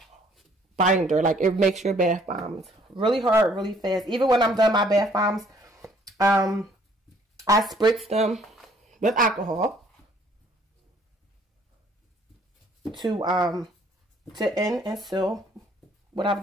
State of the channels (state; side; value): normal; both; correlation 0.61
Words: binder. Like it makes your bath bombs really hard, really fast. Even when I'm done my bath bombs, I spritz them with alcohol to end and seal what